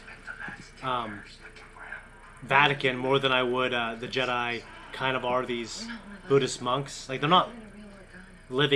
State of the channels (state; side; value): identical; both; correlation 1.00